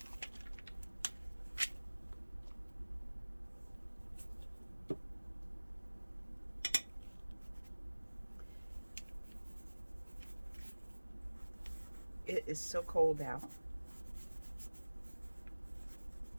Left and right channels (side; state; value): both; inverted; correlation -1.00